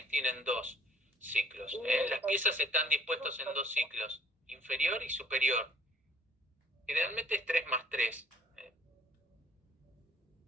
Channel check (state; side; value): normal; both; correlation 0.56